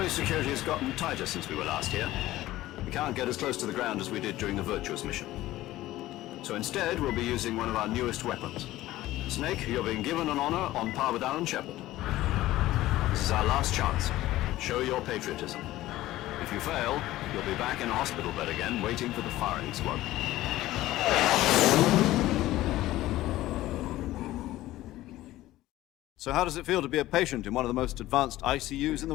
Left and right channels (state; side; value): quieter; right; 16.0 dB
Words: security has gotten tighter since we were last here. We can't get as close to the ground as we did during the Virtuous mission. So instead, we'll be using one of our newest weapons. Snake, you're being given an honor on par with Alan Shepard. This is our last chance. Show your patriotism. If you fail, you'll be back in a hospital bed again, waiting for the firing squad. So how does it feel to be a patient in one of the most advanced ICUs in